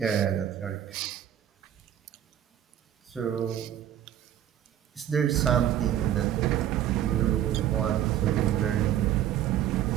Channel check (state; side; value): quieter; left; 11.0 dB